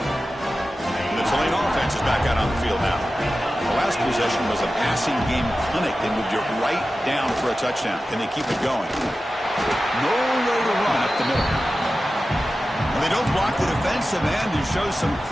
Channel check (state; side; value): normal; both; correlation 0.94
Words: The Tulane offense is back out on the field now. The last possession was a passing game clinic. They moved it right down for a touchdown. Can they keep it going? No way to run up the middle. Well, they don't block the defensive end and show some